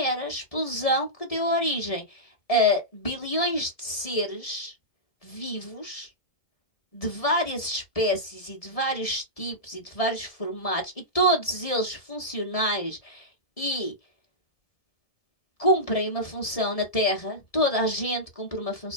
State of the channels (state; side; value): late; right; 1.7 ms